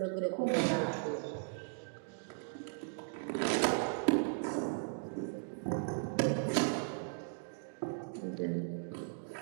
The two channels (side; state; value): left; silent; digital silence